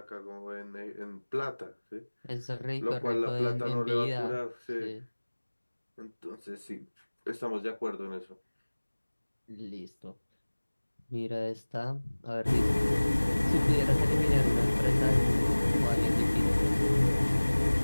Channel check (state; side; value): inverted; both; correlation -1.00